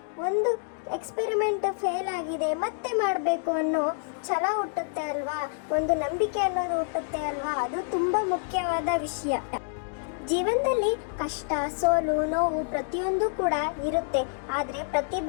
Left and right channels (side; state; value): right; silent; digital silence